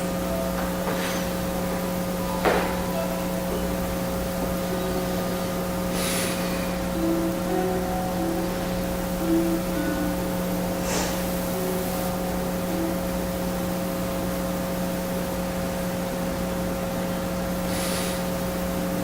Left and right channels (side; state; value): both; identical; correlation 1.00